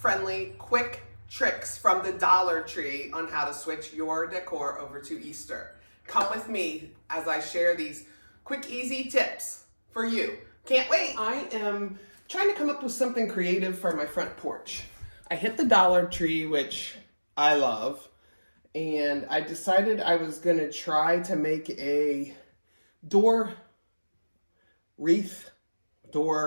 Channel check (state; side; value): inverted; both; correlation -1.00